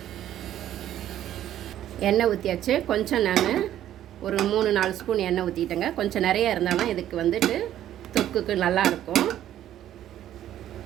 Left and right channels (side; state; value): left; quieter; 11.9 dB